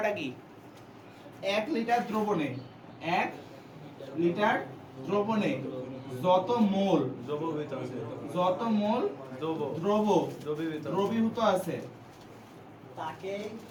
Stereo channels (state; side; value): identical; both; correlation 1.00